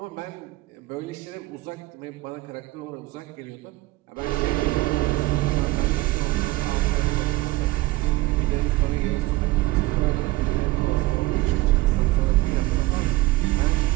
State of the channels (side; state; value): left; quieter; 19.2 dB